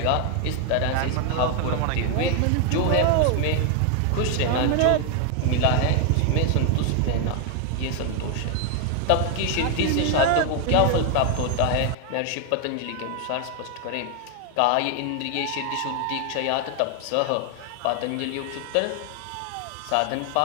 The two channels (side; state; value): both; different; correlation 0.00